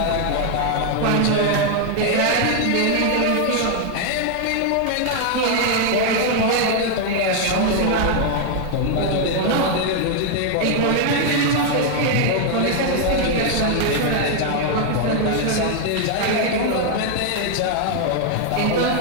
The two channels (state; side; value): different; both; correlation 0.00